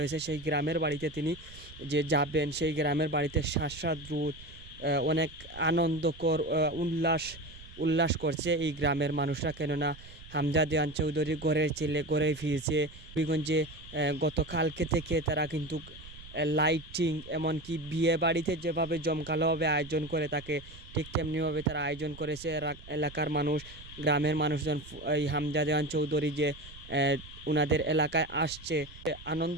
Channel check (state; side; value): noise; right; rumble, 18 dB below the sound